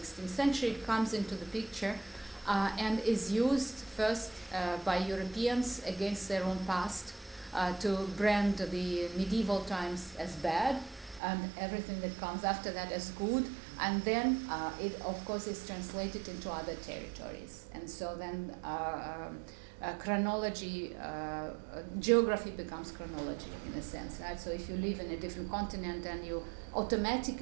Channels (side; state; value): left; drops out; at 11.2 s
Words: century, it comes into the picture and is used first by Europeans against their own past to brand the medieval times as bad and everything that comes after that as good, and then it of course is translated into other territories, and so then chronology, geography becomes chronology in a sense, right? So if you live in a different continent, and you